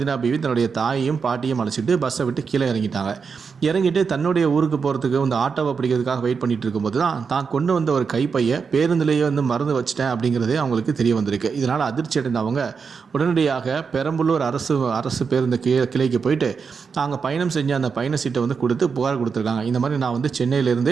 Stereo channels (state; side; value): quieter; left; 5.6 dB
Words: பிவி தன்னுடைய தாயையும் பாட்டியும் அழைச்சிட்டு பஸ்ஸை விட்டு கீழே இறங்கிட்டாங்க. இறங்கிட்டு தன்னுடைய ஊருக்கு போகிறதுக்கு வந்து ஆட்டோவை பிடிக்கிறதுக்காக வெயிட் பண்ணிட்டு இருக்கும்போது தான் கொண்டு வந்த ஒரு கைப்பையை பேருந்திலேயே வந்து மறந்து வச்சிட்டேன் அப்படிங்கிறதே அவங்களுக்கு தெரிய வந்திருக்கு. இதனால் அதிர்ச்சி அடைந்த அவங்க உடனடியாக பெரம்பலூர் அரசு பேருந்து கிளைக்கு போயிட்டு நாங்கள் பயணம் செஞ்ச அந்த பயண சீட்டை வந்து கொடுத்து புகார் கொடுத்துருக்காங்க. இந்த மாதிரி நான் வந்து